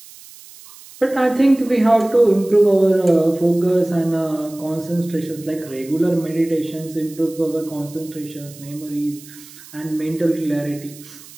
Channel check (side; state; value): right; noise; hiss, 20 dB below the sound